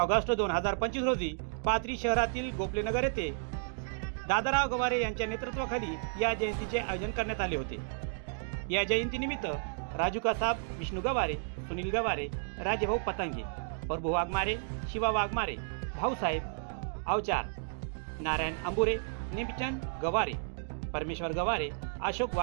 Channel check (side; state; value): left; silent; digital silence